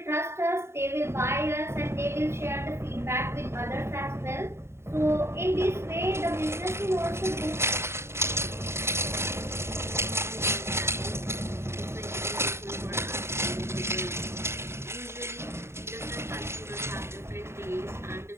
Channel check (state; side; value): late; left; 0.13 ms